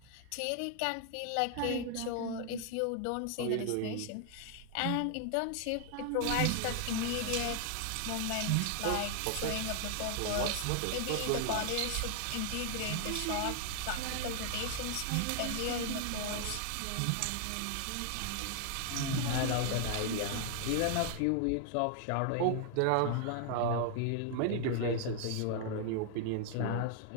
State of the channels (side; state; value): both; different; correlation 0.00